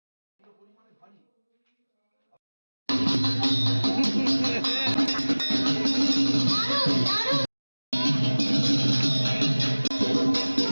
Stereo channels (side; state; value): both; inverted; correlation -1.00